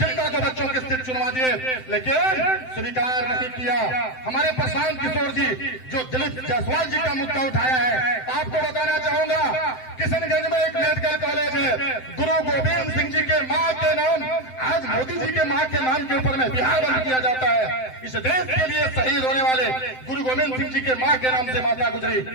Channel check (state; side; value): late; right; 7.8 ms